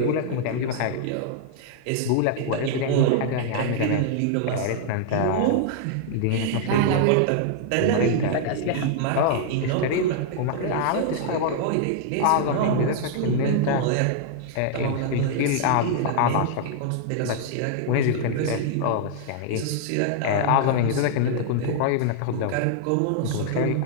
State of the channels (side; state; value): both; different; correlation -0.01